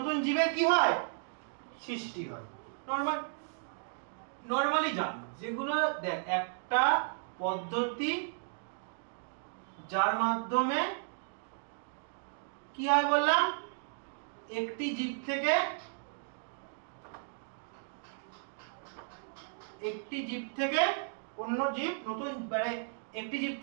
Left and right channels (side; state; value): left; silent; digital silence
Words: জীবের কি হয়? সৃষ্টি হয়। নরমালি জান যেগুলো দেখ, একটা পদ্ধতি যার মাধ্যমে কি হয় বললাম, একটি জীব থেকে অন্য জীব নতুন, মানে একটি জীব